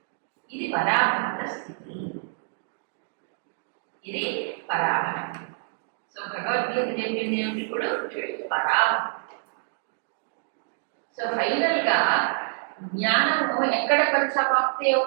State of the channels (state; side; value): silent; left; digital silence